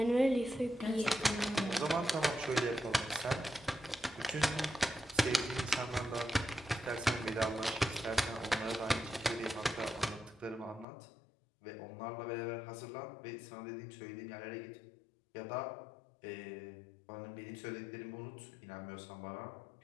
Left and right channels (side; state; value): right; drops out; at 10.9 s